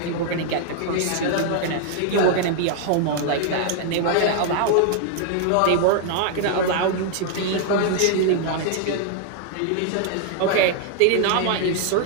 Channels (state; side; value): different; both; correlation 0.00